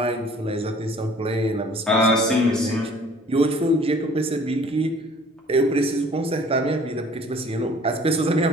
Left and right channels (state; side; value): normal; both; correlation 0.53